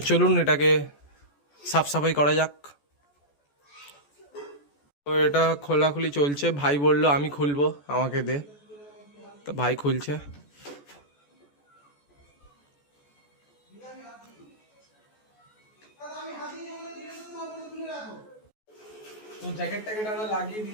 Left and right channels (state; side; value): late; right; 14 ms